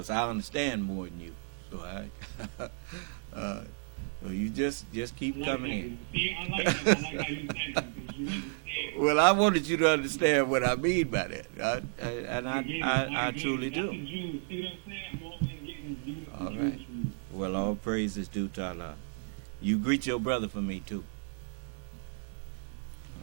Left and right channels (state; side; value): silent; left; digital silence